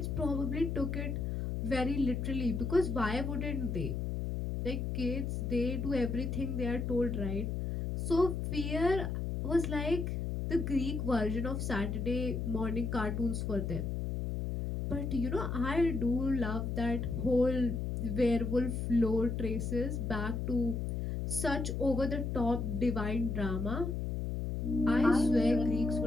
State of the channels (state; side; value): noise; left; hum, 2 dB below the sound